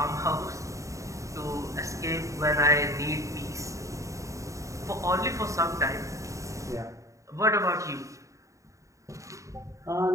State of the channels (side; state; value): left; late; 0.15 ms